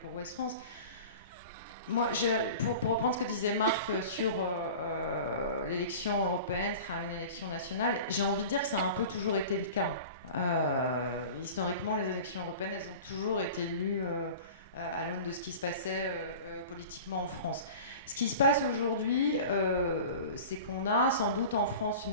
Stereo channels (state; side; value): inverted; both; correlation -0.38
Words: Ouest France. Moi, pour reprendre ce que disait Marc sur l'élection européenne sera une élection nationale, j'ai envie de dire que ça a un peu toujours été le cas. Historiquement, les élections européennes, elles ont toujours été lues à l'aune de ce qui se passait politiquement en France. Ce qui se passe aujourd'hui, c'est qu'on a sans doute en France une